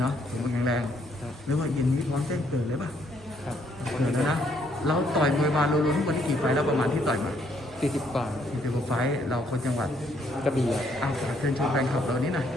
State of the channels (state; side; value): normal; both; correlation 0.69